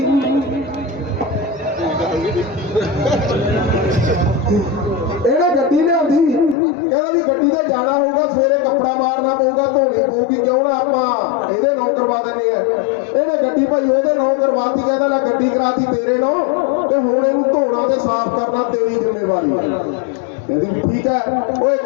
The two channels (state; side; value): drops out; right; at 6.6 s